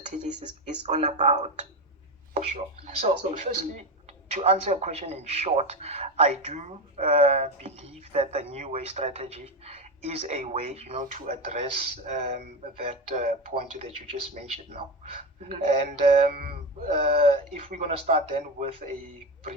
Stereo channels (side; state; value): both; normal; correlation 0.18